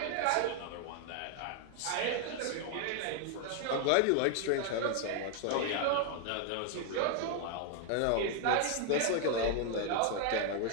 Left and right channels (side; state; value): both; different; correlation 0.00